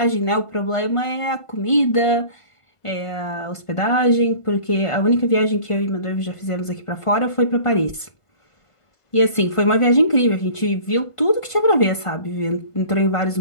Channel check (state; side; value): late; right; 1.5 ms